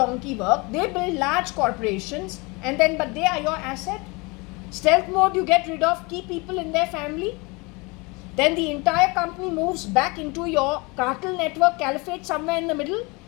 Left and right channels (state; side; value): quieter; right; 26.9 dB